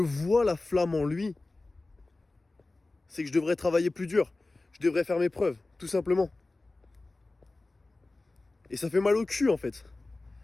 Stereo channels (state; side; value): quieter; right; 3.2 dB